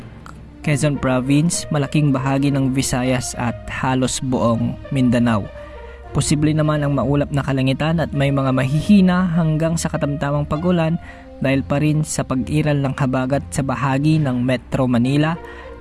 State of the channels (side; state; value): both; identical; correlation 1.00